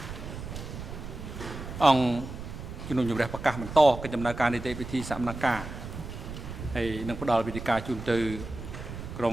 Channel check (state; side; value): noise; right; rumble, 9 dB below the sound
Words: អង្គជំនុំជម្រះប្រកាសបន្តកិច្ចដំណើរការនីតិវិធីសមនការហើយនឹងផ្ដល់វិធីការជូនទៅក្រុ